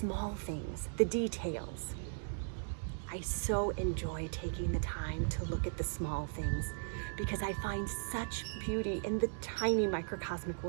things, the details. I so enjoy taking the time to look at the small things because I find such beauty in the tiny microcosmic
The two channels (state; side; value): silent; left; 53 dB below the other